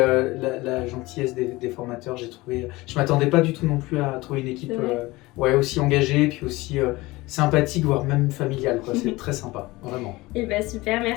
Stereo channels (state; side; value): quieter; right; 20.8 dB